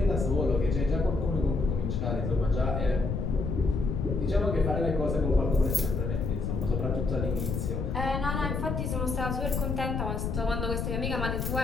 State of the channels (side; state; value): left; noise; rumble, 1 dB below the sound